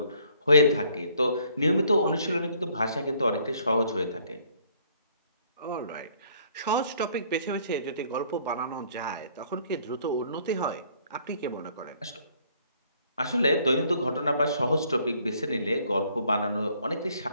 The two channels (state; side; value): inverted; both; correlation -0.63